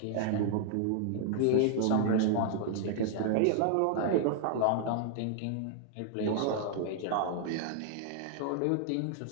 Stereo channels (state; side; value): different; both; correlation -0.01